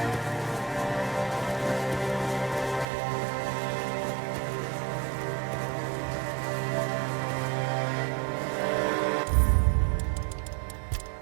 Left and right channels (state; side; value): drops out; left; at 2.9 s